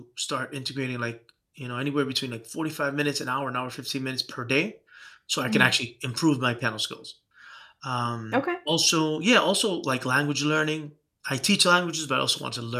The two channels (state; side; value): identical; both; correlation 1.00